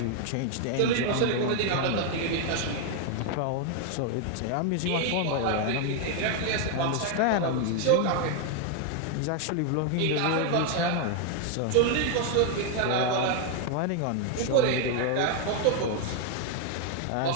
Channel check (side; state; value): both; different; correlation 0.01